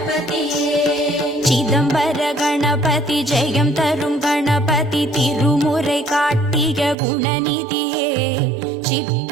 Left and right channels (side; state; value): left; drops out; at 7.0 s